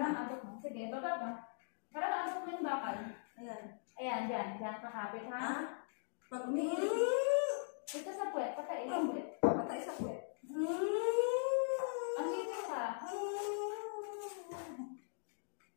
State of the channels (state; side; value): silent; right; digital silence